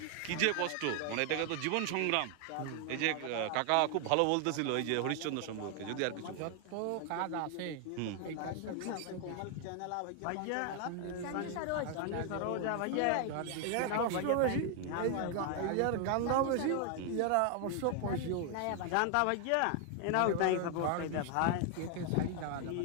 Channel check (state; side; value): different; both; correlation 0.00